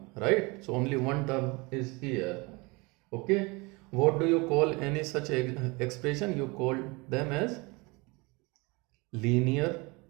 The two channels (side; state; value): left; quieter; 26.3 dB